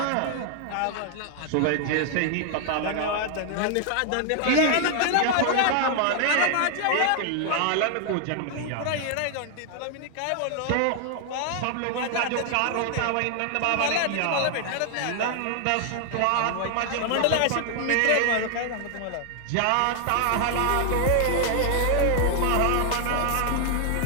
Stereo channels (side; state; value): both; different; correlation 0.00